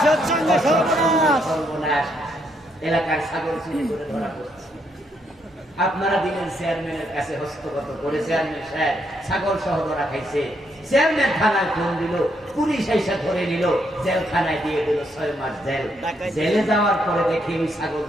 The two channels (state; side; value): normal; both; correlation 0.75